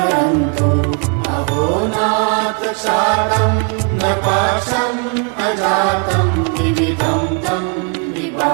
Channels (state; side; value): quieter; left; 37.0 dB